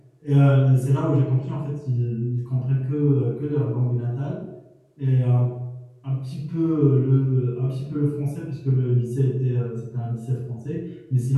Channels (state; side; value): identical; both; correlation 1.00